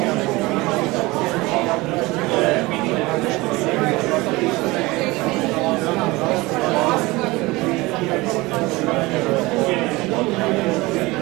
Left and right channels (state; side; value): quieter; left; 21.8 dB